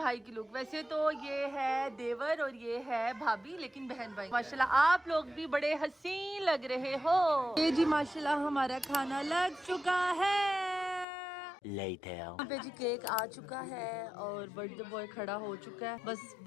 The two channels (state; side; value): drops out; right; at 11.1 s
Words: की लुक। वैसे तो ये है देवर और ये है भाभी, लेकिन बहन भाई माशाल्लाह आप लोग भी बड़े हसीन लग रहे हो। ये जी माशाल्लाह हमारा खाना लग चुका है। Later. यहाँ पे जी केक आ चुका है और बर्थडे बॉय खड़ा हो चुका है। बस